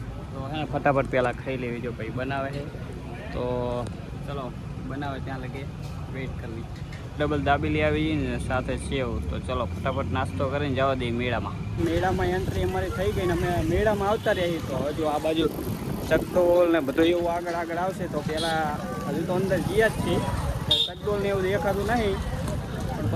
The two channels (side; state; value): both; identical; correlation 1.00